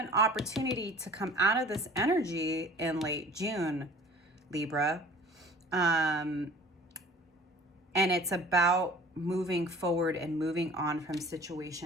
opportunity to come out of this energy in late June, Libra. And it's about moving forward and moving on from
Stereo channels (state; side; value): normal; both; correlation 0.47